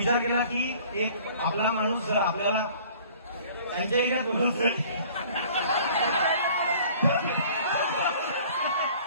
केला की एक आपला माणूस जर आपल्याला त्यांच्या एरियात बोलतो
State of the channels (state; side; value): inverted; both; correlation -0.51